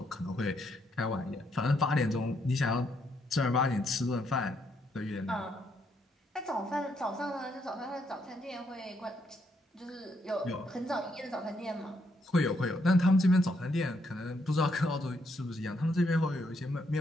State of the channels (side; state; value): both; normal; correlation 0.75